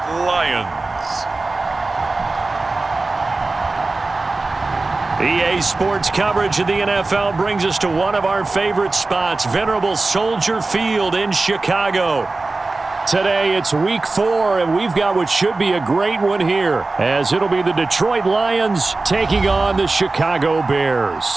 Lions. EA Sports coverage of the NFL brings us to one of our favorite spots, venerable Soldier Field in Chicago. Today it's Week 4, and we've got what should be a great one here, as it'll be the Detroit Lions taking on the Chicago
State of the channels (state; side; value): quieter; left; 3.4 dB